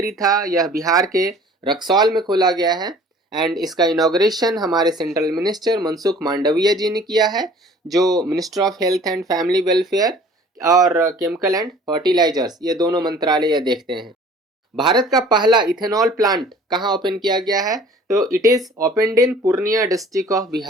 था यह बिहार के रक्सौल में खोला गया है, एंड इसका इनॉग्रेशन हमारे सेंट्रल मिनिस्टर मनसुख मांडविया जी ने किया है, जो minister of health and family welfare और केमिकल एंड फर्टिलाइजर्स ये दोनों मंत्रालय देखते हैं। भारत का पहला इथेनॉल प्लांट कहाँ ओपन किया गया है, तो it is opened in Purnia district of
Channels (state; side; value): normal; both; correlation 0.50